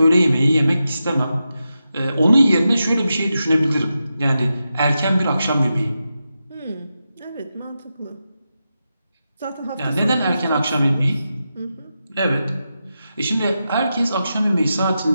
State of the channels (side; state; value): both; inverted; correlation -0.89